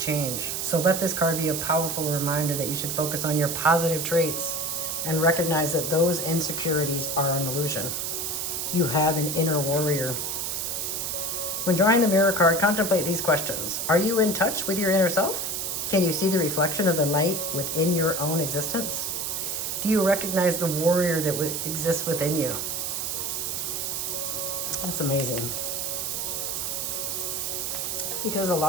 So let this card be a powerful reminder that you should focus on your positive traits and recognize that those insecurities are an illusion. You have an inner warrior. When drawing the mirror card, contemplate these questions. Are you in touch with your inner self? Can you see the reflection of the light within your own existence? Do you recognize the warrior that exists within you? That's amazing. Because a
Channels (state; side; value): noise; right; hiss, 2 dB below the sound